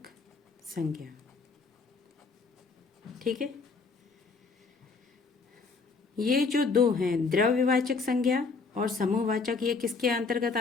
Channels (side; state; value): right; quieter; 4.5 dB